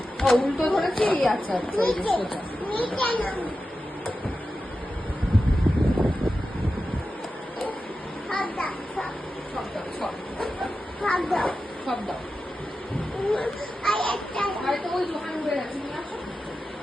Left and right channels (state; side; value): normal; both; correlation 0.92